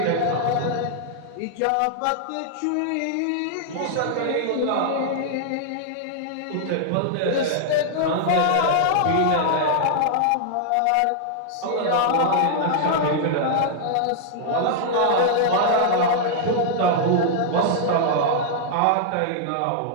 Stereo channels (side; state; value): both; different; correlation -0.01